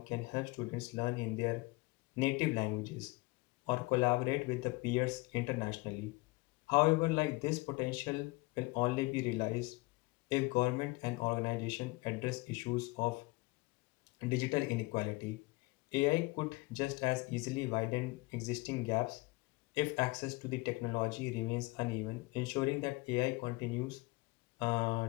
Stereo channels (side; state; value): right; quieter; 23.7 dB